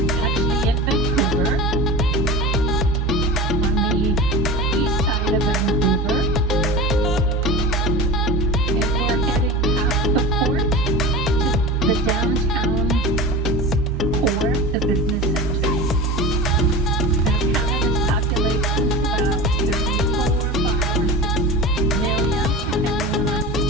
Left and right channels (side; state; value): both; normal; correlation 0.31